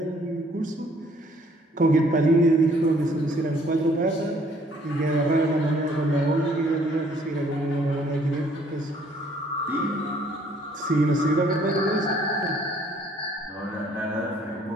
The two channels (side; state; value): both; normal; correlation 0.61